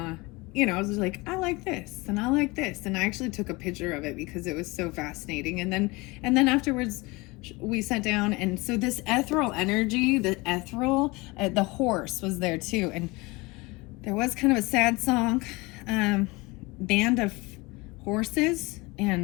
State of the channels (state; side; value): quieter; right; 24.0 dB